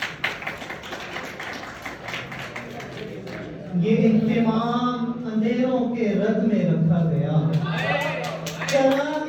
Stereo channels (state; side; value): identical; both; correlation 1.00